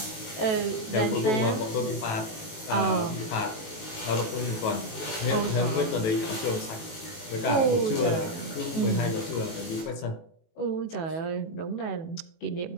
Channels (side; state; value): right; late; 18 ms